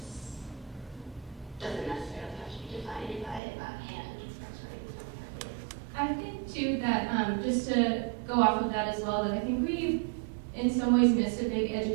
doesn't necessarily have to be defined by that hand. I think too that just to go off of that as well, that I think we in some ways missed a big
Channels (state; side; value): drops out; left; at 3.4 s